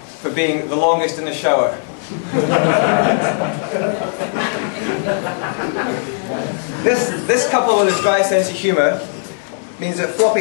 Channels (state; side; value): silent; right; 64 dB below the other